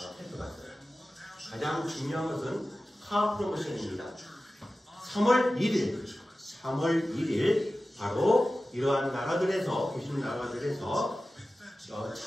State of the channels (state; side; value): normal; both; correlation 0.95